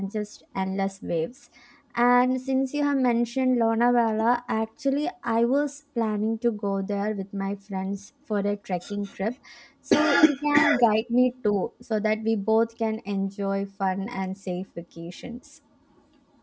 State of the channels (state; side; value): identical; both; correlation 1.00